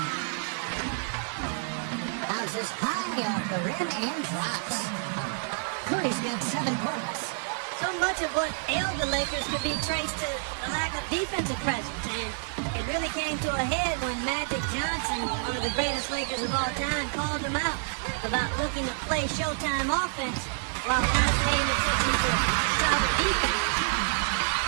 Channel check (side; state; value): left; silent; digital silence